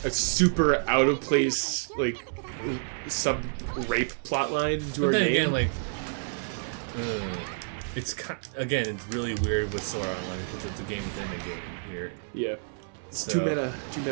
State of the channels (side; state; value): left; silent; digital silence